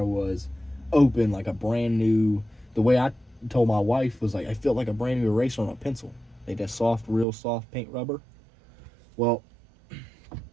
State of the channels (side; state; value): left; drops out; at 7.2 s